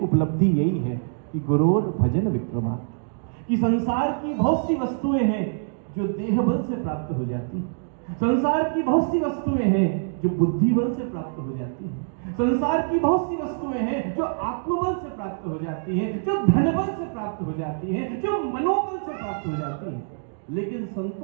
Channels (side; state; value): left; silent; digital silence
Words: उपलब्धि यही है कि गुरोर भजन विक्रमा, कि संसार की बहुत सी वस्तुएं हैं जो देह बल से प्राप्त हो जाती हैं, संसार की बहुत सी वस्तुएं हैं जो बुद्धि बल से प्राप्त हो जाती हैं, संसार की बहुत सी वस्तुएं हैं जो आत्मबल से प्राप्त हो जाती हैं, जो धन बल से प्राप्त हो जाती हैं, जो मनोबल से प्राप्त हो जाती हैं। लेकिन